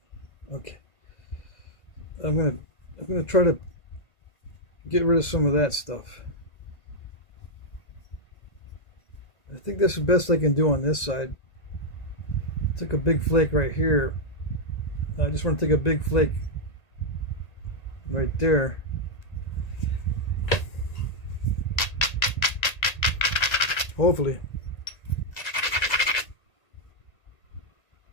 Okay. I'm gonna try to get rid of some of that stuff. I think that's the best I can do on this side. Took a big flake right here. I just want to take a big flake right there. Hopefully.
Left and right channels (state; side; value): late; right; 1.8 ms